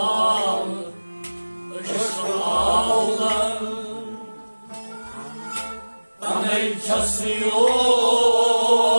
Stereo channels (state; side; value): inverted; both; correlation -1.00